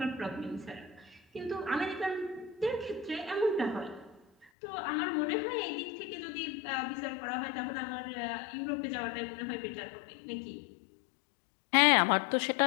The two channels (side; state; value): right; drops out; at 4.5 s